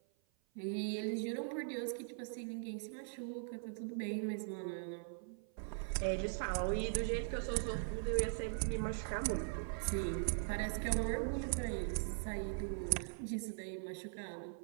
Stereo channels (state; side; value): silent; left; 50 dB below the other